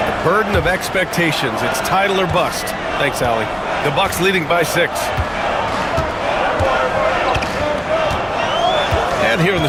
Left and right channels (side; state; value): both; identical; correlation 1.00